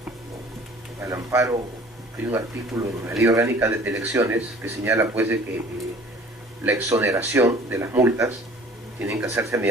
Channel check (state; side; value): normal; both; correlation 0.49